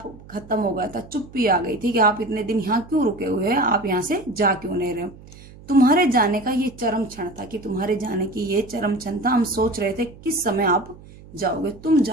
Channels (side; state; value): right; noise; hum, 20 dB below the sound